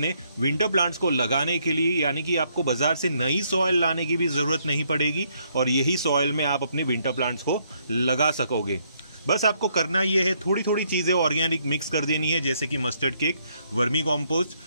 विंटर प्लांट्स को लगाने के लिए, यानी कि आपको बाजार से नई सॉइल लाने की भी जरूरत नहीं पड़ेगी और यही सॉइल में आप अपने विंटर प्लांट्स को लगा सकोगे। बस आपको करना ये है, थोड़ी थोड़ी चीजें ऑर्गेनिक मिक्स कर देनी है, जैसे कि मस्टर्ड केक, वर्मी कॉम्पोस्ट,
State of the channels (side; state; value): both; inverted; correlation -0.71